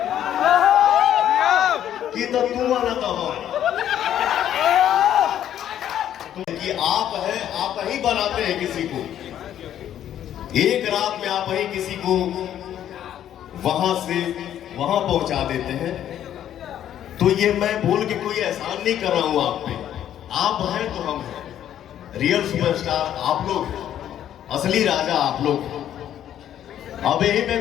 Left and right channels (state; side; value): quieter; right; 10.8 dB